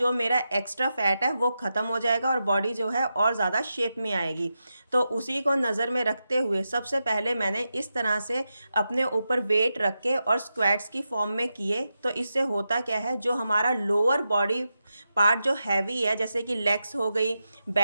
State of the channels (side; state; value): both; inverted; correlation -0.89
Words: मेरा एक्स्ट्रा फैट है वो ख़त्म हो जाएगा और बॉडी जो है और ज़्यादा शेप में आएगी। तो उसी को नज़र में रखते हुए सबसे पहले मैंने इस तरह से अपने ऊपर वेट रख के और स्क्वाट्स की फॉर्म में किए। तो इससे होता क्या है, जो हमारा लोअर बॉडी पार्ट जो हैवी है, जैसे कि लेग्स हो गई,